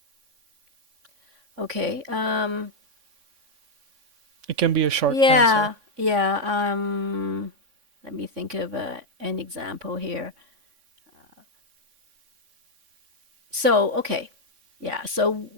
Okay. It can be a short answer. Yeah. Yeah. Let me think of an example here. So, okay. Yeah. So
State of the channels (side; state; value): left; late; 3.5 ms